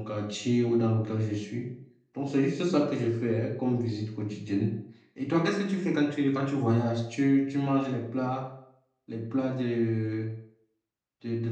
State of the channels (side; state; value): both; identical; correlation 1.00